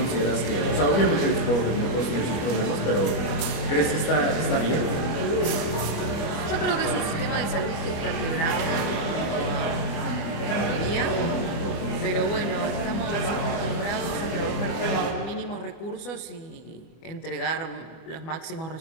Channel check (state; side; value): late; right; 25 ms